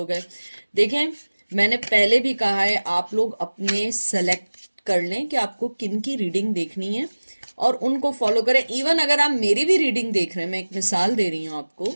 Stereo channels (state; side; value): inverted; both; correlation -1.00